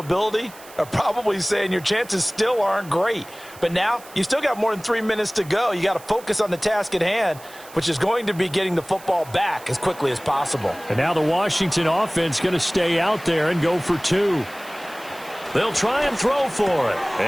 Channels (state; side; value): noise; right; hiss, 20 dB below the sound